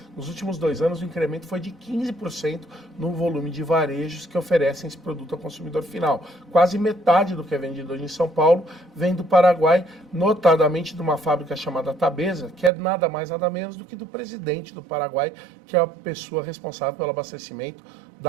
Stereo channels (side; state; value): left; drops out; at 12.7 s